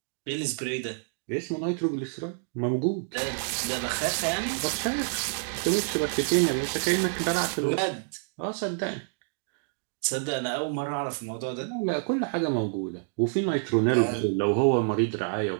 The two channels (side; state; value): left; silent; 58 dB below the other